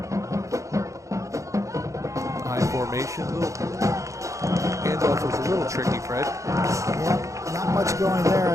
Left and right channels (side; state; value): left; late; 0.15 ms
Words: Formation. Handoff was a little tricky, Fred. Yeah, not much going there